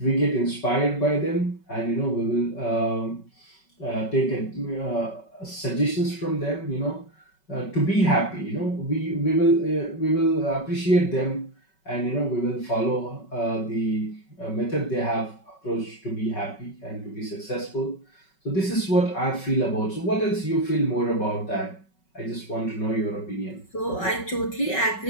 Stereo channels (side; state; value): right; late; 5.3 ms